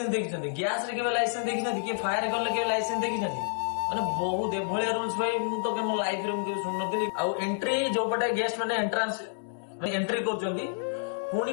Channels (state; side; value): silent; right; 59 dB below the other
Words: ଦେଖିଛନ୍ତି, ଗ୍ୟାସ ରେ କେବେ ଲାଇସେନ୍ସ ଦେଖିଛନ୍ତି, କିଏ ଫାୟାର ଗଲେ କେବେ ଲାଇସେନ୍ସ ଦେଖିଛନ୍ତି? ମାନେ ବହୁତ ଏଭଳିଆ ରୁଲ୍ସ ଭାଇ ମୁଁ ତ ମୋ ଲାଇଫରେ ମୁଁ କେବେ ଶୁଣୁନଥିଲି। ଆଉ ଏଣ୍ଟ୍ରି ଯୋଉପଟେ ଗେଷ୍ଟ ମାନେ ଏଣ୍ଟ୍ରାନ୍ସ ଏଣ୍ଟ୍ରି କରୁଛନ୍ତି, ପୁଣି